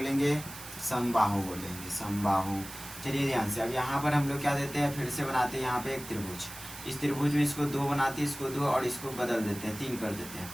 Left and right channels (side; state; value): right; noise; hiss, 13 dB below the sound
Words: समबाहु बोलेंगे, समबाहु। चलिए ध्यान से, अब यहाँ पर हम लोग क्या देते हैं, फिर से बनाते हैं यहाँ पे एक त्रिभुज। इस त्रिभुज में इसको 2 बनाते हैं, इसको 2 और इसको बदल देते हैं, 3 कर देते हैं।